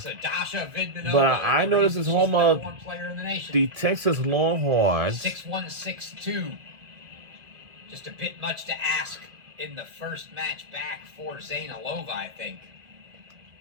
Dasha Vidmanova, But I know this is home of player in the nation. the Texas Longhorns. 6-1, 6-2. Just a bit much to ask in the first match back for Zainalova, I think.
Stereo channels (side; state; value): left; late; 2.1 ms